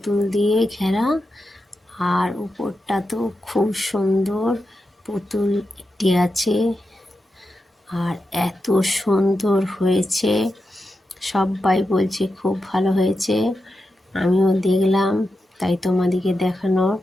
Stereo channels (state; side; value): normal; both; correlation 0.89